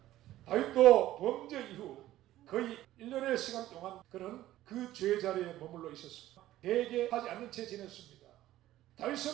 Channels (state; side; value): quieter; left; 14.5 dB